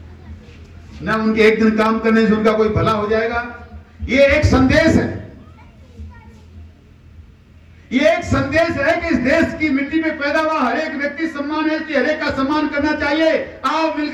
ना उनके एक दिन काम करने से उनका कोई भला हो जाएगा। ये एक संदेश है, ये एक संदेश है कि इस देश की मिट्टी में पैदा हुआ हर एक व्यक्ति सम्मान है, इसलिए हर एक का सम्मान करना चाहिए। आओ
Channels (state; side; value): identical; both; correlation 1.00